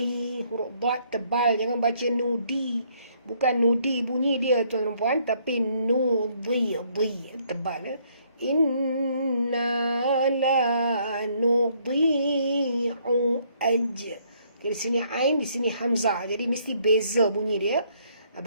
huruf dad tebal, jangan baca nudi, bukan nudi bunyi dia tuan-tuan puan, tapi nudi, tebal. Inna la nudi'u ajr. Di sini ain, di sini hamzah, jadi mesti beza bunyi dia,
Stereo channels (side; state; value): both; inverted; correlation -0.67